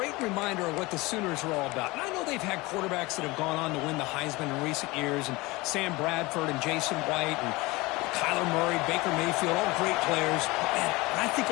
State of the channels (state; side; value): quieter; right; 22.4 dB